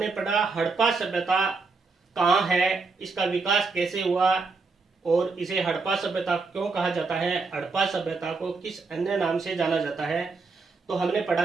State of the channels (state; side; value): quieter; left; 4.2 dB